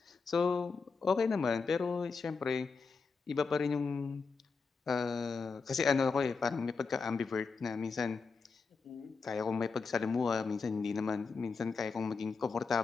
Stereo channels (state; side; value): quieter; right; 4.8 dB